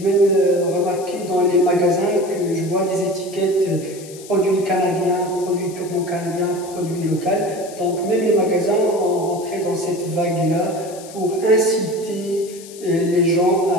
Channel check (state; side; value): noise; left; hiss, 18 dB below the sound